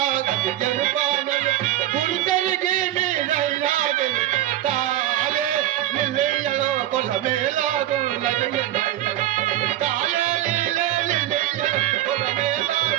గది ఎరుపానలు గురు తిరిగి మీరైనా తాలే నిలయలో కులమేలాగున్నది తాలే నిలయలో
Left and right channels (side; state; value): left; quieter; 13.3 dB